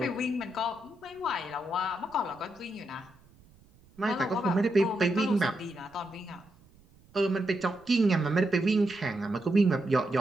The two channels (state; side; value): noise; right; rumble, 28 dB below the sound